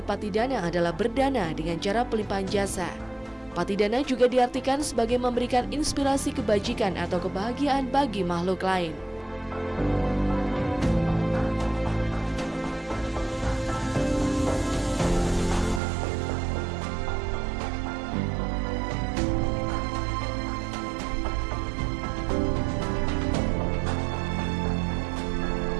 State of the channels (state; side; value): drops out; left; at 15.8 s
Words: adalah berdana dengan cara pelimpahan jasa. Patidana juga diartikan sebagai memberikan inspirasi kebajikan atau kebahagiaan bagi makhluk lain.